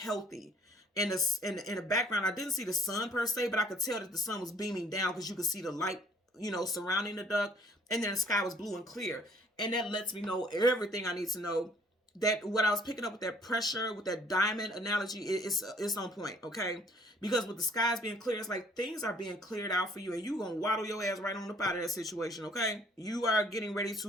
In the background, I didn't see the sun per se, but I could tell that the sun was beaming down because you could see the light, surrounding the duck. And then the sky was blue and clear. And that lets me know everything I need to know. That what I was picking up with that pressure, with that diamond analogy, it's on point, okay? Because with the skies being clear, it's like things are being cleared out for you, and you're going to waddle your ass right on up out of that situation, okay? You are getting ready to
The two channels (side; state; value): both; normal; correlation 0.58